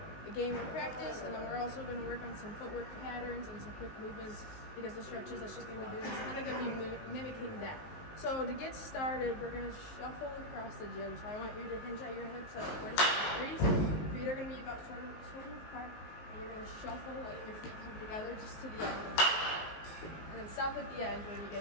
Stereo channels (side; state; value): right; late; 19 ms